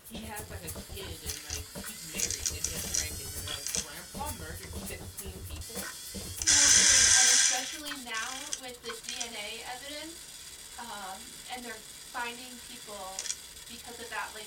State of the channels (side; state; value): both; identical; correlation 1.00